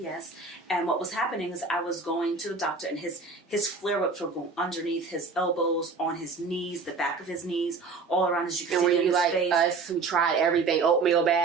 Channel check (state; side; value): quieter; left; 4.4 dB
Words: And what was happening is I was going to the doctor, and his flare-ups were going underneath his elbows, on his knees, the back of his knees, all around, as you can see in his face. Us who tried everything, oatmeal